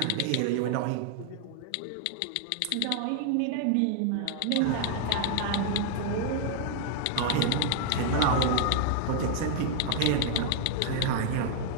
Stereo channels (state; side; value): different; both; correlation 0.00